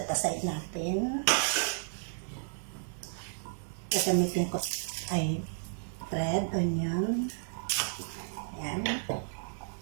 natin. Gagamitin ko ay red onion. Ayan.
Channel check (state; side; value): silent; left; 56 dB below the other